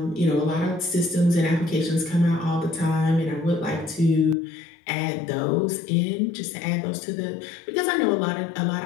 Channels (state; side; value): drops out; right; at 4.4 s